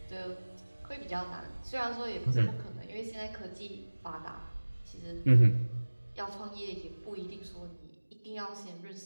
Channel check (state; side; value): inverted; both; correlation -1.00